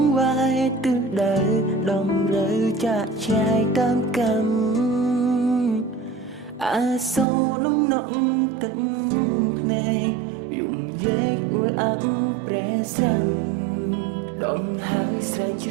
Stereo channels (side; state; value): left; drops out; at 7.2 s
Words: ងវាយទិសដៅដំរើចាក់ឆ្ងាយតាមកម្មអាសូរនំនក់ទឹកភ្នែកយំយែកអួលអាប់ប្រែស្រាំដងហើយស្រែកច្